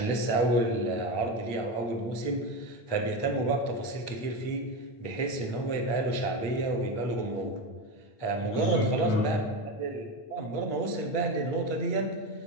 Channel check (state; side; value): late; right; 8.9 ms